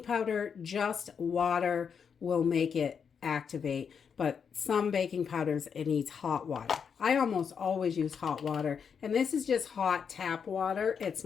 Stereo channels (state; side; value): quieter; right; 6.7 dB